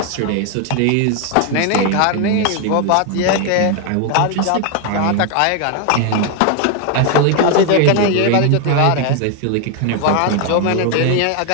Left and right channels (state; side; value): different; both; correlation 0.01